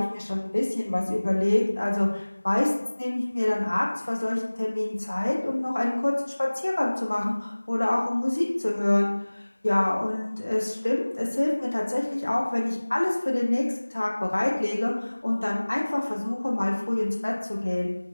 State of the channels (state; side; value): inverted; both; correlation -1.00